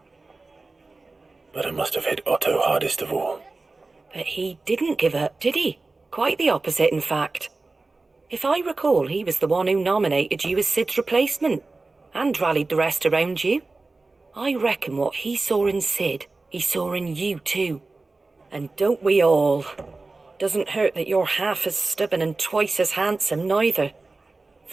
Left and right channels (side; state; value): left; quieter; 3.5 dB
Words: But it must have hit Otto hardest of all. But he didn't give up, did he? Quite the opposite, in fact. If I recall, he was the one who nominated you as Sid's replacement, and rallied the rest around you. I reckon what he saw in Sid, he saw in you too. And don't we all? Doesn't hurt that you're half as stubborn and twice as handsome, neither.